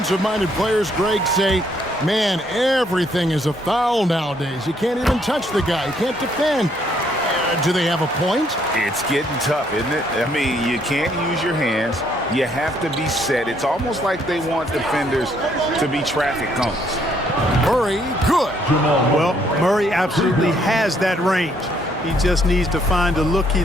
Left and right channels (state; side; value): normal; both; correlation 0.69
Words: players, Greg, say, man, everything is a foul nowadays. You can't even touch the guy. You can't defend. Do they have a point? It's getting tough, isn't it? I mean, you can't use your hands. You have to be set. It's almost like they want defenders to be traffic cones. Murray, good. Well, Murray absolutely has that range. He just needs to find the look he